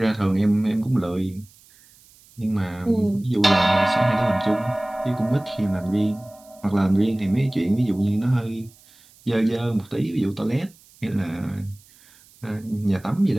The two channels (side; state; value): right; noise; hiss, 27 dB below the sound